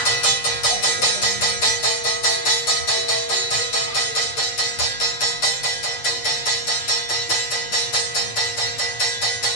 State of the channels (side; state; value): right; late; 8.2 ms